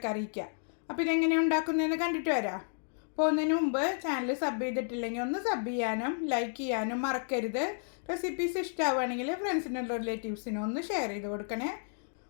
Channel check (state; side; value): silent; right; digital silence